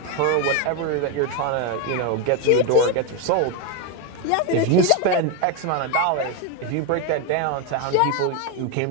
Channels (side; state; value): both; different; correlation 0.02